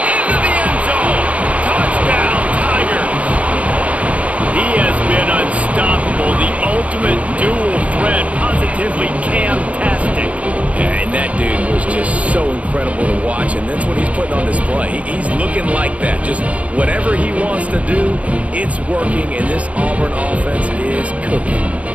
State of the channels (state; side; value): late; left; 0.065 ms